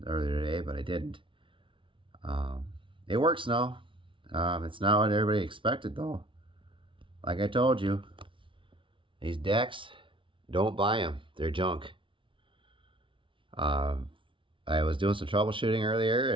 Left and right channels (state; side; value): late; left; 0.25 ms